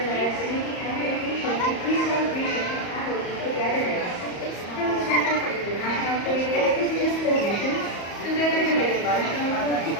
a meeting and education and free celebration of family togetherness. From the Center for International Trade and Business Relations, together with the National Food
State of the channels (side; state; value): right; late; 34 ms